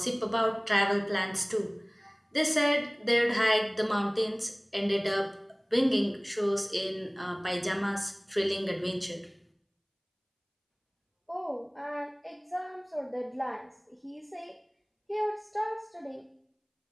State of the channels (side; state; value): both; identical; correlation 1.00